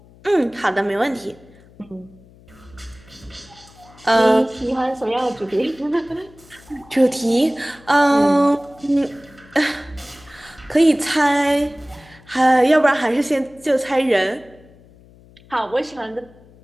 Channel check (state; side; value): noise; left; hum, 25 dB below the sound